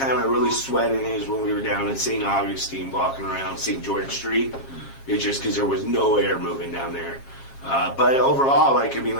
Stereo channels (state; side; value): late; right; 7.4 ms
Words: I really sweat in it is when we were down in St. Augustine walking around St. George Street. It's just because there was no air moving down there. But overall, like